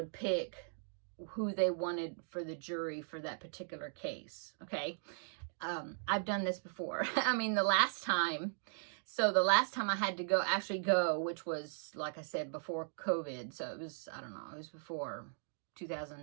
pick who they wanted for the jury for that particular case. Okay. I've done this before. I mean, the last time I had to actually go, which was, like I said, before COVID. So it was, I don't know, it was before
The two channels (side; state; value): left; silent; digital silence